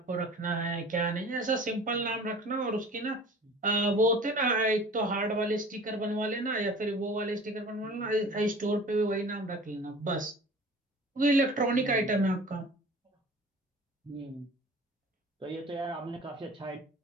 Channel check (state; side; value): normal; both; correlation 0.43